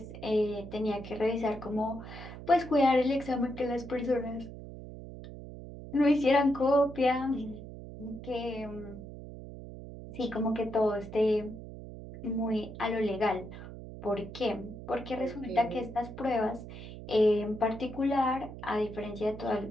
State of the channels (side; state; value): right; noise; hum, 12 dB below the sound